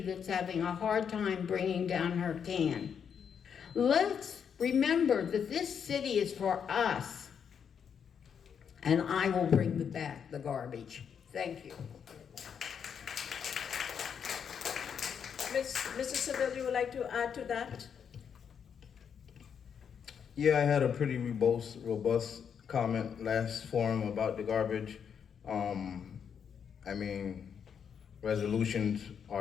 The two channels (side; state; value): right; quieter; 7.4 dB